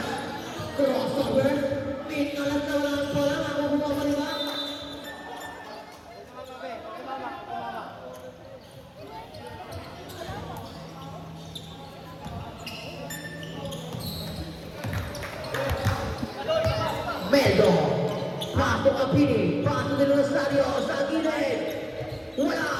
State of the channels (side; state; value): both; identical; correlation 1.00